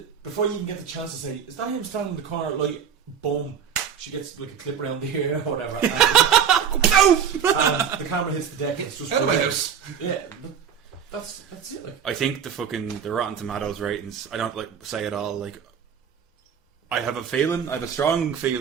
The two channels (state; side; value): quieter; left; 7.9 dB